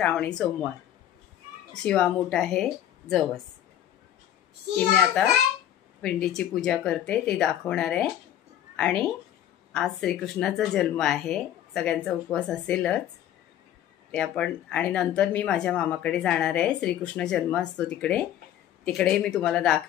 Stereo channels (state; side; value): quieter; right; 11.3 dB